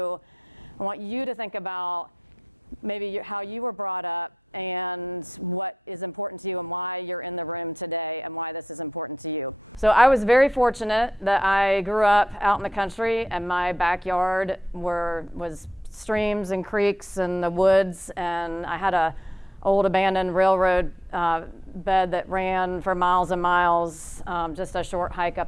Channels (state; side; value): normal; both; correlation 0.80